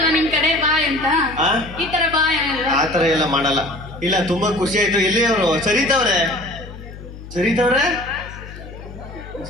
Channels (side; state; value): left; noise; hum, 14 dB below the sound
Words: ನಿಮ್ ಕಡೆ ಬಾಯ್ ಅಂತ? ಈ ತರ ಬಾಯ್ ಆ ತರ ಎಲ್ಲ ಮಾಡಲ್ಲ. ಇಲ್ಲ ತುಂಬಾ ಖುಷಿ ಆಯ್ತು. ಎಲ್ಲಿ ಅವರು? ಸರಿತವ್ರೆ ಸರಿ